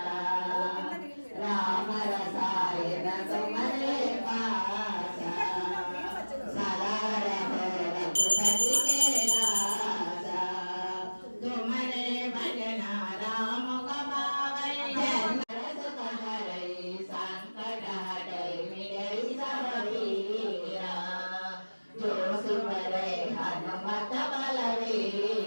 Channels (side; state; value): both; inverted; correlation -1.00